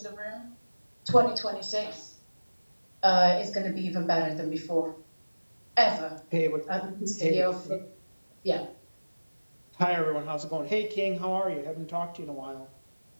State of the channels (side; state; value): both; inverted; correlation -1.00